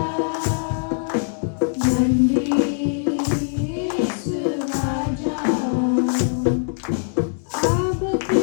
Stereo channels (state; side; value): silent; right; digital silence